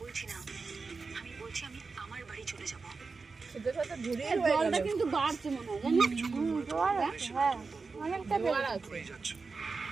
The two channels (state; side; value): quieter; left; 4.4 dB